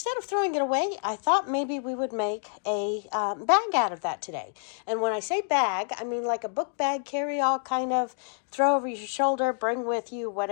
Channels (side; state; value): right; silent; digital silence